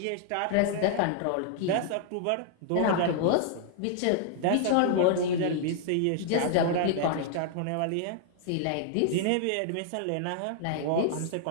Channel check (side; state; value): both; different; correlation -0.01